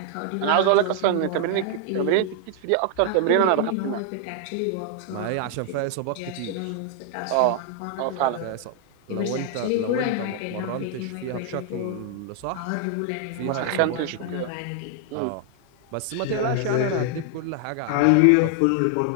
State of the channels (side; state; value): both; different; correlation 0.00